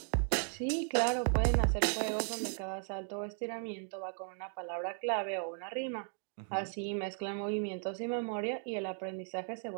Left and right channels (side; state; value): left; silent; 54 dB below the other